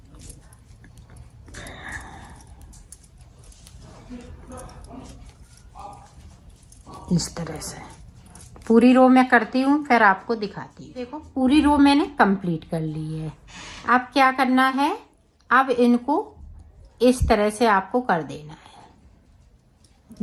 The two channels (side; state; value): both; identical; correlation 1.00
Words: इस तरह से पूरी रो मैं करती हूँ, फिर आपको दिखाती हूँ। देखो, पूरी रो मैंने कंप्लीट कर ली है। अब क्या करना है, अब इनको इस तरह से आपको कर देना